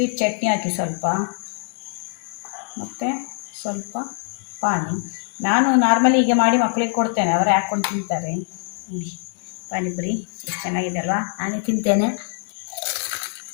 ಚಟ್ನಿ ಹಾಕಿ ಸ್ವಲ್ಪ, ಮತ್ತು ಸ್ವಲ್ಪ ಪಾನಿ. ನಾನು ನಾರ್ಮಲಿ ಹೀಗೆ ಮಾಡಿ ಮಕ್ಕಳಿಗೆ ಕೊಡ್ತೇನೆ, ಅವರೇ ಹಾಕ್ಕೊಂಡು ತಿಂತಾರೆ. ಪಾನಿಪುರಿ ಎಷ್ಟು ಚೆನ್ನಾಗಿದೆ ಅಲ್ವಾ, ನಾನೇ ತಿಂತೇನೆ.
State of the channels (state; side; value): silent; right; 58 dB below the other